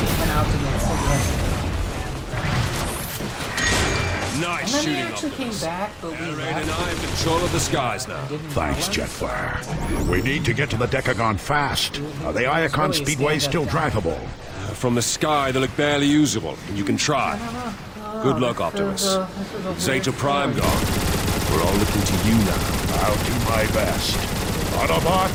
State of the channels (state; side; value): identical; both; correlation 1.00